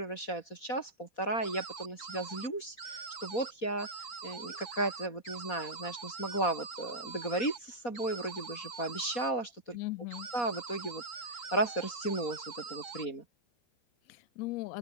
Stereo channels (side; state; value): right; late; 4.2 ms